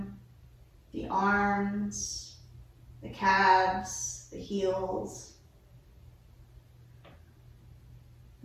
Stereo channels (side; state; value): both; identical; correlation 1.00